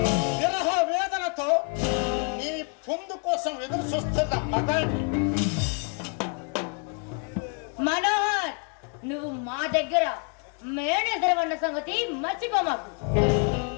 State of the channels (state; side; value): quieter; right; 39.6 dB